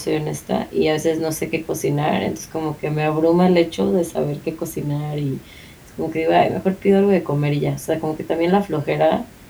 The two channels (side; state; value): both; identical; correlation 1.00